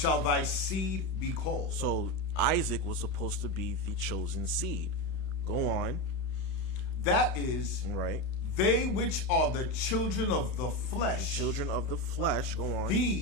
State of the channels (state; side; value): late; right; 31 ms